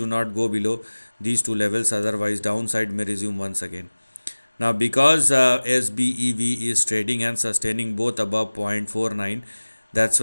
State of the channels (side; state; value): both; inverted; correlation -1.00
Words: not go below these two levels, otherwise downside may resume once again. Now, because SBEV is trading and sustaining both above 0.49, that's